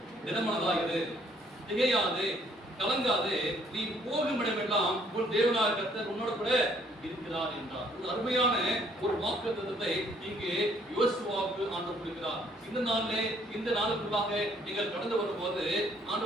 திடமனதாகிறது, திகையாது, கலங்காது, நீ போகும் இடமெல்லாம் உன் தேவனாகிய கர்த்தர் உன்னோட கூட இருக்கிறார் என்றார். ஒரு அருமையான ஒரு வாக்குத்தத்தத்தை இங்கே யோசுவாவுக்கு ஆண்டவர் கொடுக்கிறார். இந்த நாளிலே இந்த நாளுக்குள்ளாக நீங்கள் கடந்து வரும்போது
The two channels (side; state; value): both; normal; correlation 0.64